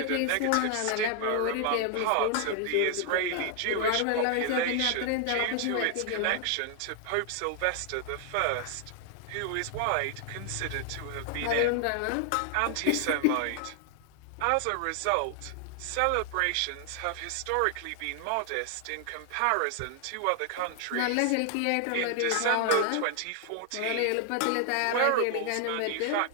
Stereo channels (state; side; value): different; both; correlation 0.00